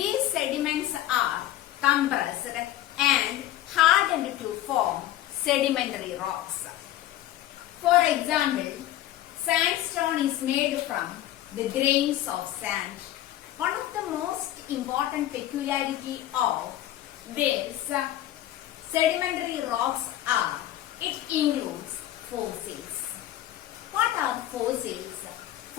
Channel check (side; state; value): right; quieter; 13.6 dB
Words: sediments are compressed and hardened to form sedimentary rocks. For example, sandstone is made from the grains of sand. One of the most important peculiarity of these sedimentary rocks are it includes fossils. What are fossils?